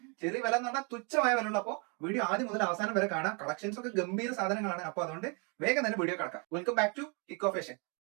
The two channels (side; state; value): left; quieter; 34.7 dB